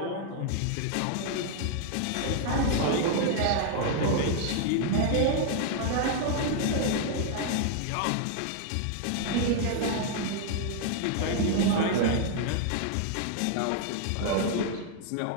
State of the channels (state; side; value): different; both; correlation 0.00